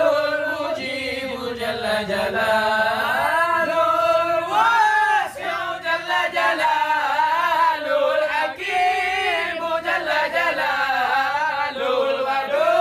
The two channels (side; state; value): both; identical; correlation 1.00